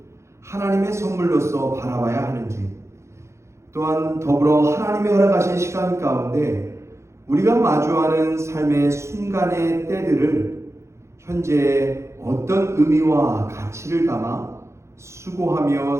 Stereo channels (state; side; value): late; left; 0.14 ms